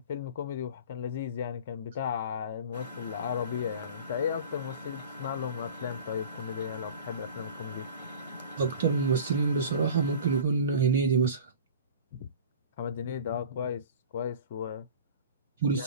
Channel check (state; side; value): inverted; both; correlation -0.38